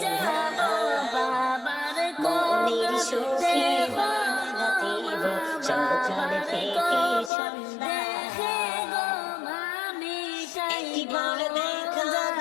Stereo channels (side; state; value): right; drops out; at 7.3 s